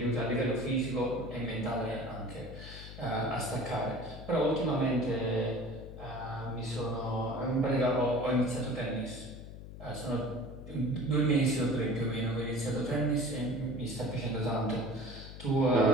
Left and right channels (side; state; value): left; noise; hum, 12 dB below the sound